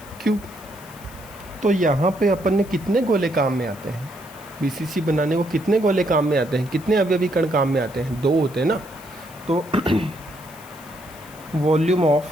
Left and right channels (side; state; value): left; noise; hiss, 21 dB below the sound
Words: तो यहाँ पे अपन ने कितने गोले काम में आते हैं, BCC बनाने को कितने गोले काम में आते हैं, कितने अवयवी कण काम में आते हैं, 2 होते हैं ना। तो वॉल्यूम ऑफ,